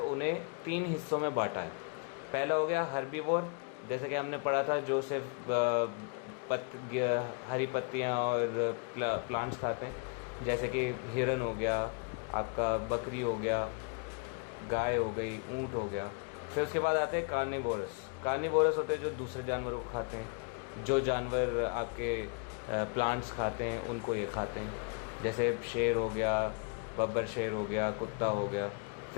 उन्हें 3 हिस्सों में बांटा है। पहला हो गया हर्बीवोर, जैसे कि हमने पढ़ा था, जो सिर्फ हरी पत्तियाँ और प्लांट्स खाते हैं, जैसे कि हिरन हो गया, आपका बकरी हो गया, गाय हो गई, ऊँट हो गया। फिर उसके बाद आते हैं कार्निवोरस। कार्निवोरस होते हैं जो दूसरे जानवरों को खाते हैं, जो जानवर आपके प्लांट्स खाते हैं उनको ये खाते हैं, जैसे शेर हो गया, बब्बर शेर हो गया, कुत्ता हो गया।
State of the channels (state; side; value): quieter; right; 35.8 dB